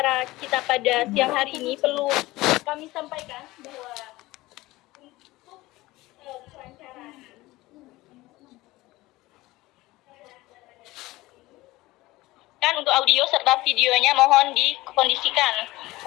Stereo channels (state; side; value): quieter; right; 19.1 dB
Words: kita pada siang hari ini, perlu kami sampaikan bahwa untuk perancangan kan untuk audio serta videonya mohon dikondisikan.